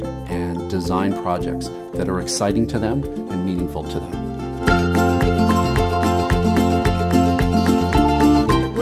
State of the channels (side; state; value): both; identical; correlation 1.00